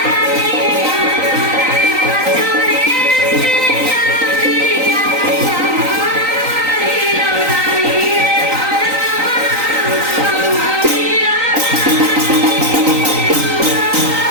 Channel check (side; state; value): left; late; 3.9 ms